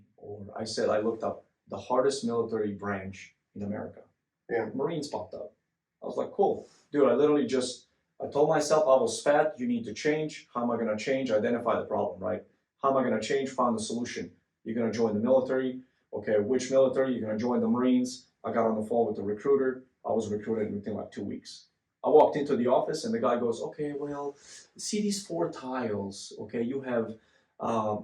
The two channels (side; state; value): both; identical; correlation 1.00